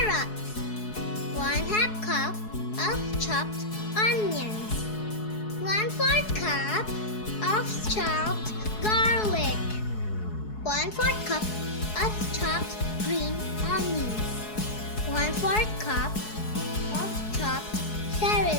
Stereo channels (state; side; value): late; right; 4.7 ms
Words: 1/2 cup of chopped onions, 1/4 cup of chopped garlic, 1/4 cup of chopped green onions, 1/4 cup of chopped